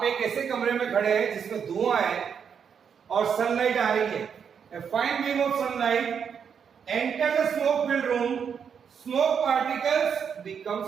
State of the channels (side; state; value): left; quieter; 7.2 dB